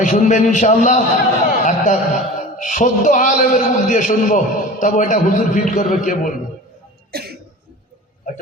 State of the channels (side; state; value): both; normal; correlation 0.37